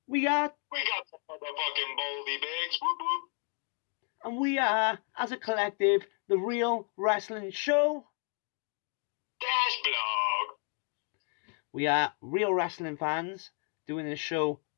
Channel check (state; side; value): quieter; right; 39.8 dB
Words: We got the fucking Baldy Bigs. Whoop whoop. And we are, as a collective, the Real Wrestling Show Dash Blog. We are real wrestling fans doing this show